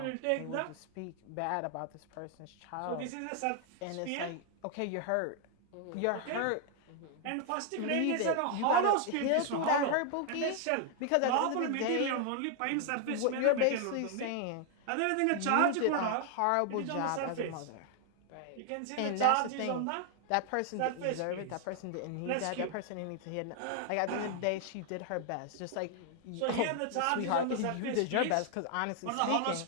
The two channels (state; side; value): different; both; correlation 0.00